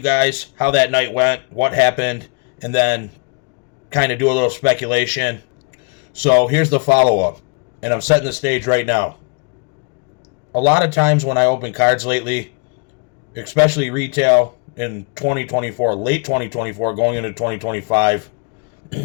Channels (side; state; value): right; quieter; 35.6 dB